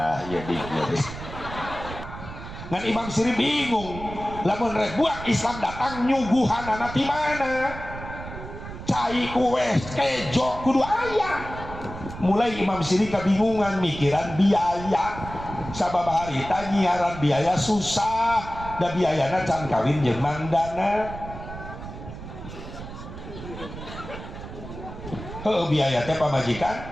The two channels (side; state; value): right; noise; rumble, 11 dB below the sound